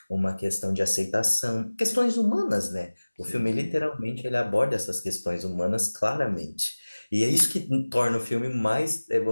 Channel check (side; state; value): both; inverted; correlation -1.00